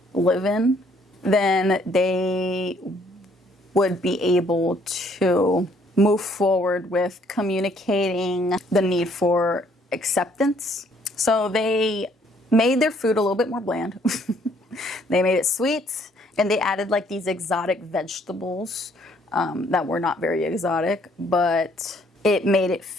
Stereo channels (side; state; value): both; normal; correlation 0.64